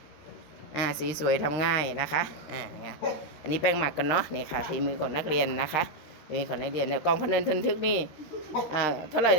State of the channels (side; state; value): right; late; 13 ms